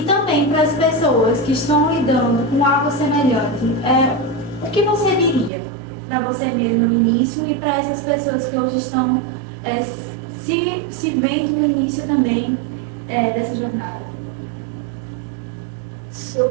também para as pessoas que estão lidando com algo semelhante, o que você diria para você mesma no início e para essas pessoas que hoje estão se vendo no início também dessa jornada? Se eu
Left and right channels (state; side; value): drops out; left; at 5.5 s